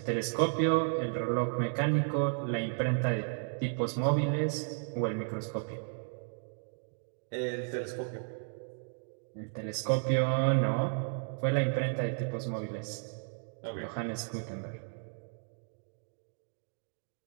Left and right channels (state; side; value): silent; left; 55 dB below the other